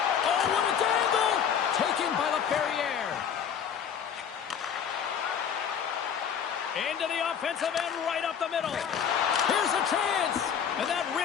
Oh, what a dangle! Taken by Laferriere. Into the offensive end, right up the middle. Here's a chance. And that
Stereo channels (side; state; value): right; quieter; 7.8 dB